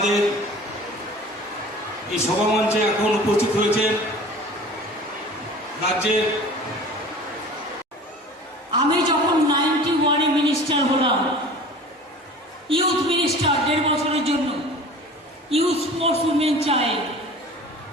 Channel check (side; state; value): both; normal; correlation 0.42